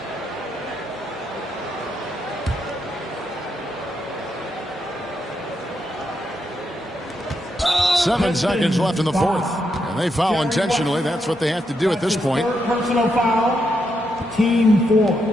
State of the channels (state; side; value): normal; both; correlation 0.81